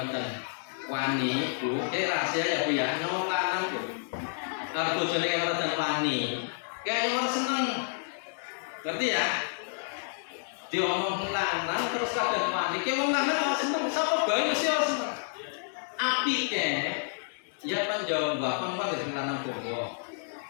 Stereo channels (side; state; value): right; silent; digital silence